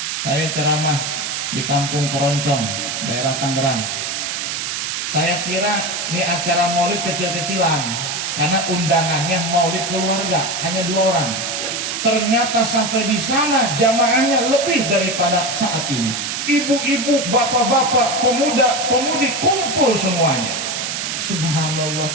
Saya ceramah di Kampung Keroncong, daerah Tangerang. Saya kira ini acara maulid kecil-kecilan, karena undangannya maulid keluarga hanya 2 orang. Ternyata sampai di sana jamaahnya lebih daripada saat ini. Ibu-ibu, bapak-bapak, pemuda, pemudi kumpul semuanya. Subhanallah,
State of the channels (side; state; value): right; noise; hiss, 3 dB below the sound